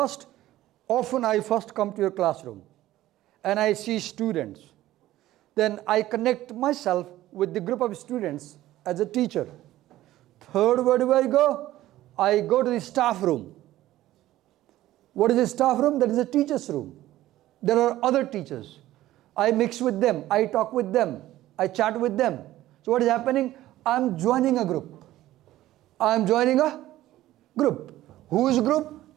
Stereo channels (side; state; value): left; quieter; 15.0 dB